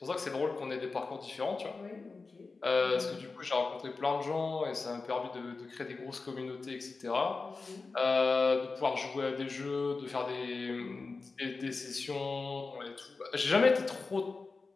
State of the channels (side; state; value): right; quieter; 4.0 dB